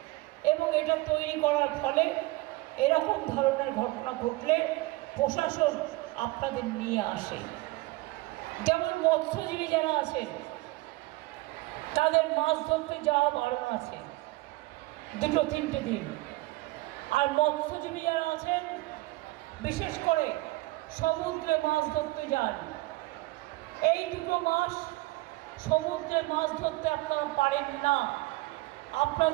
এবং এটা তৈরি করার ফলে এরকম ধরনের ঘটনা ঘটলে প্রশাসন আপনাদের নিয়ে আসে। যেমন মৎস্যজীবী যারা আছেন তাদের মাছ ধরতে যাওয়া বারণ আছে 2-3 দিন। আর মৎস্যজীবী যারা আছেন বিশেষ করে সমুদ্রে মাছ ধরতে যান, এই 2 মাস সমুদ্রে মাছ ধরতে আপনারা পারেন না,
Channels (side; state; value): left; quieter; 20.8 dB